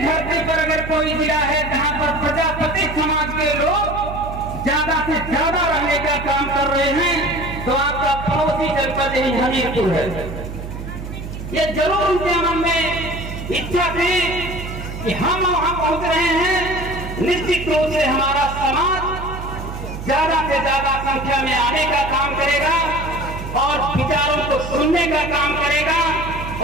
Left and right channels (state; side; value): noise; right; hum, 9 dB below the sound